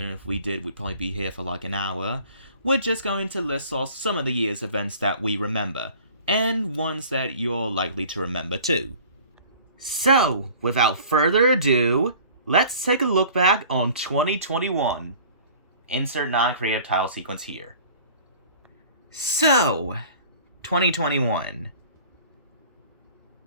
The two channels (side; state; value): both; inverted; correlation -0.47